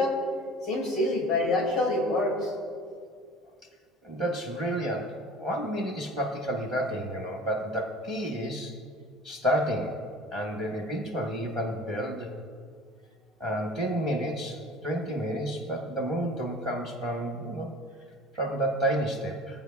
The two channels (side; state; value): both; normal; correlation 0.43